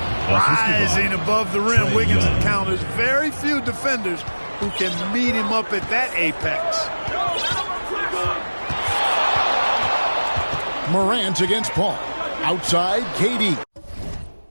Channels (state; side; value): inverted; both; correlation -1.00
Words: Rising above the rim, Wiggins encounters very few defenders who can meet him up at that apex. Morant against Paul. Outside, KD.